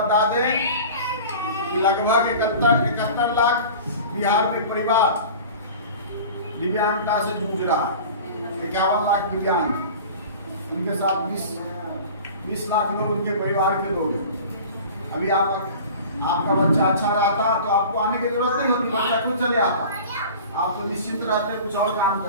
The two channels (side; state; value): both; inverted; correlation -0.39